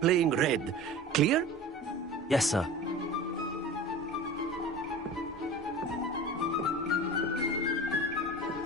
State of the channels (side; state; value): both; normal; correlation 0.36